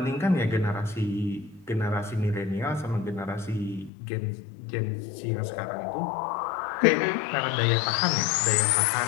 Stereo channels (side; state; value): right; drops out; at 3.9 s